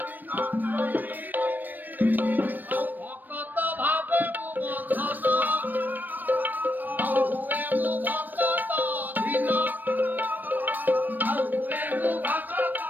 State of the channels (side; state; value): left; late; 0.089 ms